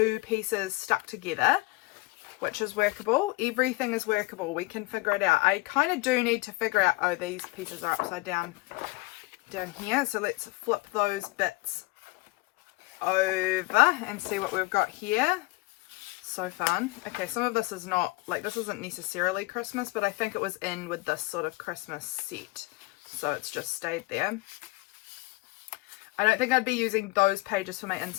pieces stuck together, which is workable. Everything is workable. We can figure it out. I kind of do need to figure out, oh, these pieces are upside down here. So let's flip those bits over and see what we've got here. So fun. Okay, some of this is not, like, this isn't necessarily Christmas, but I think it was in with this sort of Christmas set. So it's just stayed there. I don't think I'd be using those pages for my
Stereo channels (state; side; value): quieter; right; 22.9 dB